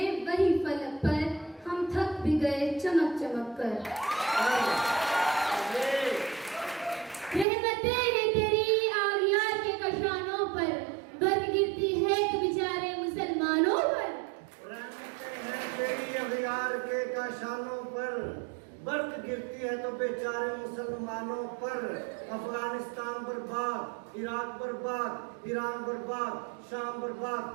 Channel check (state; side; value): drops out; left; at 7.5 s